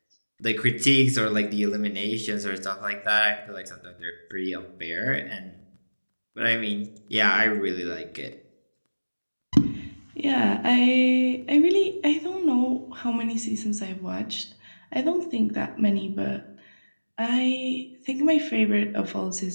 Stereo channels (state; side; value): inverted; both; correlation -1.00